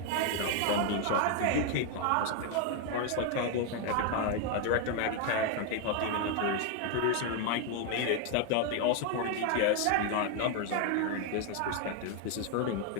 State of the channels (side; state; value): both; different; correlation 0.01